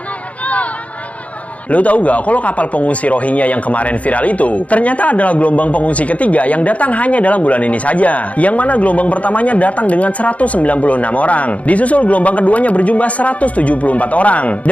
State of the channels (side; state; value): right; late; 0.067 ms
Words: Lu tahu nggak kalau kapal pengungsi Rohingya yang kemarin viral itu ternyata adalah gelombang pengungsi ketiga yang datang hanya dalam bulan ini saja. Yang mana gelombang pertamanya datang dengan 196 orang. Disusul gelombang keduanya berjumlah 174 orang.